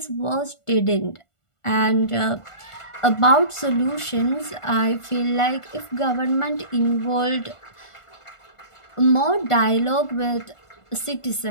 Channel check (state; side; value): late; right; 1.4 ms